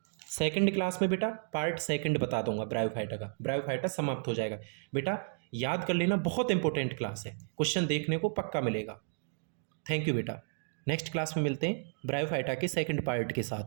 सेकंड क्लास में बेटा पार्ट सेकंड बता दूंगा ब्रायोफाइटा का, ब्रायोफाइटा समाप्त हो जाएगा बेटा। याद कर लेना, बहुत इंपॉर्टेंट क्लास है, क्वेश्चन देखने को पक्का मिलेगा। थैंक यू बेटा, नेक्स्ट क्लास में मिलते हैं ब्रायोफाइटा के सेकंड पार्ट के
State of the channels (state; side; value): silent; left; digital silence